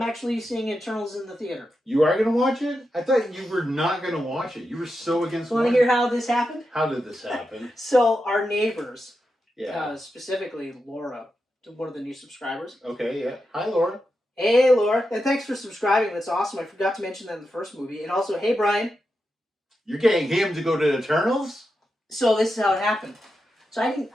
actually seeing Eternals in the theater. You are going to watch it? I thought you were not going to watch it. You were so against it. Want to hear how this happened? How did this happen? So our neighbors, specifically Laura, one of the new subscribers. Okay, yeah. Hi, Laura. Hey, Laura. And thanks for subscribing. That's awesome. I forgot to mention that in the first movie. And also, hey, Brian. You're getting him to go to Eternals? So this is how it happened. So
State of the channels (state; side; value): normal; both; correlation 0.88